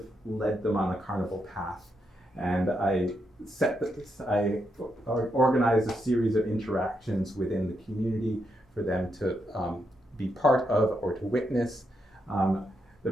led them on a carnival path, and I organized a series of interactions within the community for them to be part of or to witness. The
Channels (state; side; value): normal; both; correlation 0.81